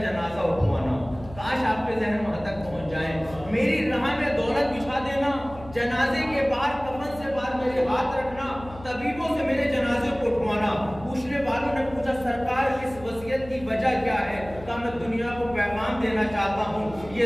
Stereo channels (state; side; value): noise; left; hum, 17 dB below the sound